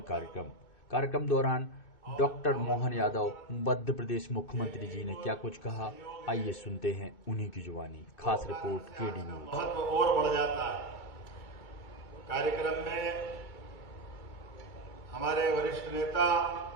कार्यक्रम दौरान डॉक्टर मोहन यादव मध्य प्रदेश मुख्यमंत्री जी ने क्या कुछ कहा, आइए सुनते हैं उन्हीं की जुबानी। खास रिपोर्ट केडी न्यूज। महत्व और बढ़ जाता है। कार्यक्रम में हमारे वरिष्ठ नेता,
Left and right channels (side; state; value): right; late; 2.6 ms